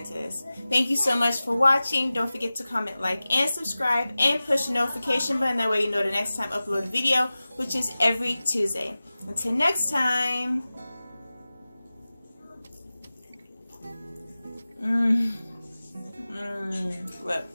this. Thank you so much for watching. Don't forget to comment, like, and subscribe, and push the notification button. That way you know the next time I upload a video, which is every Tuesday. Until next time. Well,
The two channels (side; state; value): both; inverted; correlation -0.97